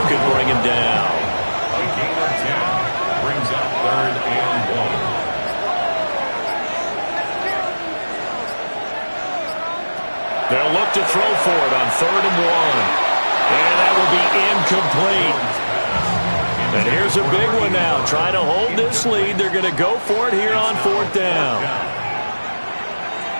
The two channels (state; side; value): inverted; both; correlation -1.00